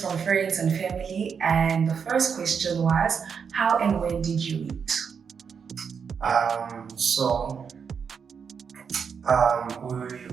friends and family, and the first question was, how and when did you meet? Um, so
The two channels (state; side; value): quieter; left; 6.5 dB